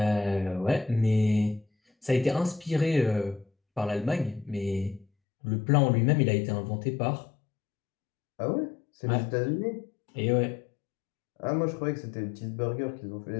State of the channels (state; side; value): drops out; right; at 5.1 s